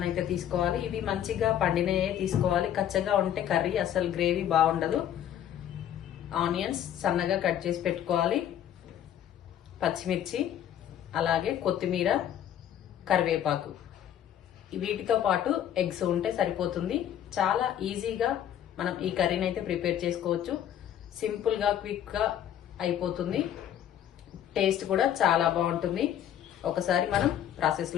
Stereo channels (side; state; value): right; quieter; 10.5 dB